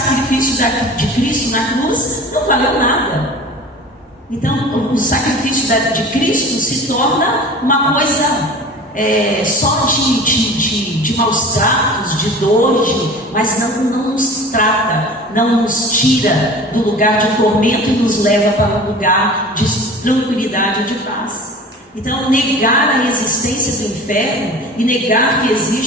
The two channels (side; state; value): both; normal; correlation 0.39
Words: de Cristo na cruz não valeu nada. Então o sacrifício de Cristo se torna uma coisa só de maus tratos, de dor, mas não nos trata, não nos tira do lugar de tormento e nos leva para um lugar de tranquilidade e de paz. Então negar a existência do inferno e negar que